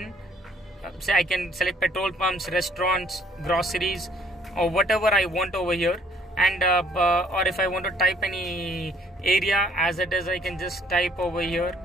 say I can select petrol pumps, restaurants, groceries, or whatever I want over here. And or if I want to type any area as it is, I can just type over here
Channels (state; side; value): normal; both; correlation 0.61